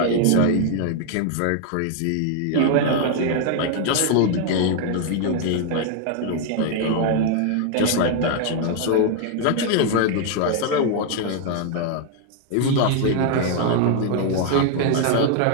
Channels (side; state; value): both; different; correlation 0.00